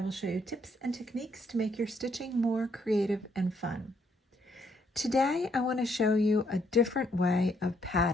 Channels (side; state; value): both; normal; correlation 0.71